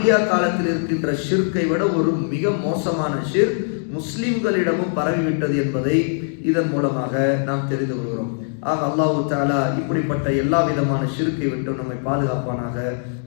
காலத்தில் இருக்கின்ற ஷிர்கை விட ஒரு மிக மோசமான ஷிர்க் முஸ்லிம்களிடமும் பரவிவிட்டது என்பதை இதன் மூலமாக நாம் தெரிந்து கொள்கிறோம். ஆக அல்லாஹ் தஆலா இப்படிப்பட்ட எல்லா விதமான ஷிர்க்கை விட்டு நம்மை பாதுகாப்பானாக.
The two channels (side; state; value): right; silent; digital silence